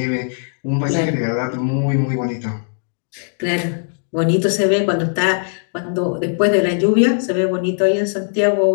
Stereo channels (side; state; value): right; silent; 66 dB below the other